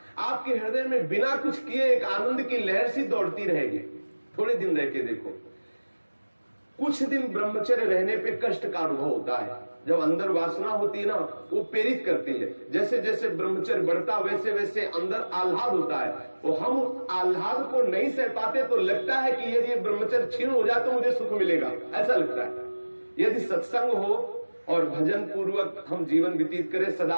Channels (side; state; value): both; inverted; correlation -1.00